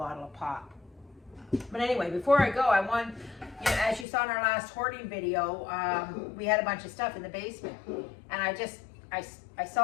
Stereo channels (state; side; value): drops out; right; at 4.0 s